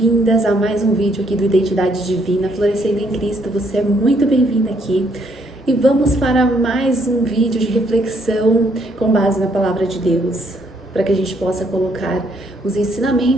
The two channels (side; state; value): both; normal; correlation 0.70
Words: a mais um vídeo aqui do Identidade Divina, Florescendo em Cristo. Você é muito bem-vinda aqui e vamos para mais um vídeo de reflexão com base na Palavra de Deus, para que a gente possa colocar os